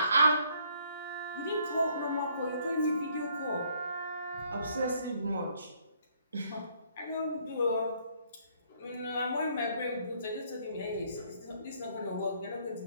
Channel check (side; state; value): both; inverted; correlation -0.65